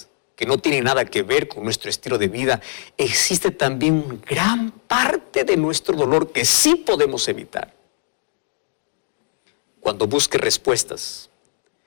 que no tienen nada que ver con nuestro estilo de vida, existe también gran parte de nuestro dolor que sí podemos evitar. Cuando busques respuestas,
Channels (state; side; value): silent; right; 65 dB below the other